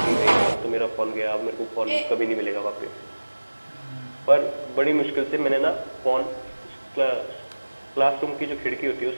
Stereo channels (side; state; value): both; inverted; correlation -1.00